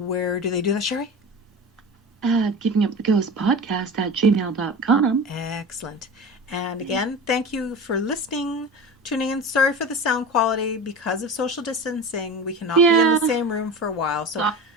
do they do that, Sherry? Givinguptheghostpodcast at gmail.com. Excellent. And again, thank you for listening, tuning in. Sorry for the sound quality. Because of social distancing, we cannot be in the same room for a while. So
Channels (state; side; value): normal; both; correlation 0.31